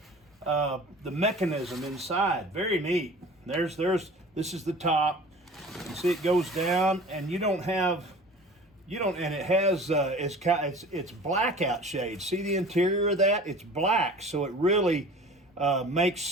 the mechanism inside. Very neat. This is the top. You see it goes down, and and it has, it's blackout shade. See the interior of that? It's black, so it really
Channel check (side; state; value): both; normal; correlation 0.42